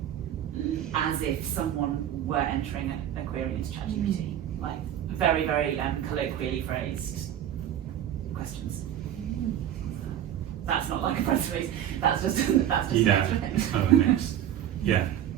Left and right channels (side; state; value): left; quieter; 10.8 dB